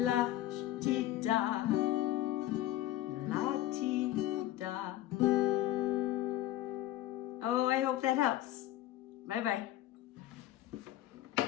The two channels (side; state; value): right; quieter; 14.4 dB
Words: ti da la ti da. Oh, I hope that helps. Bye bye.